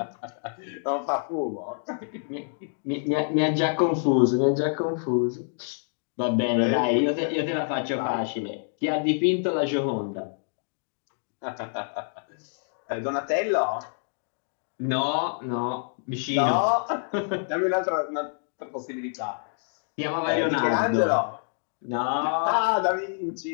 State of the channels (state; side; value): silent; right; digital silence